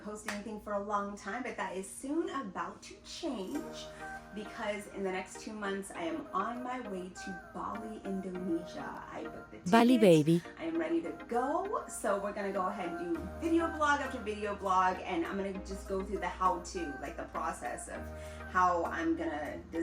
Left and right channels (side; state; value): both; identical; correlation 1.00